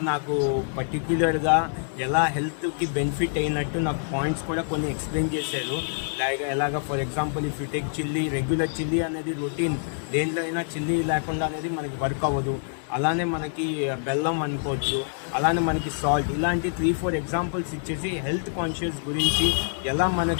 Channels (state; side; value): silent; right; digital silence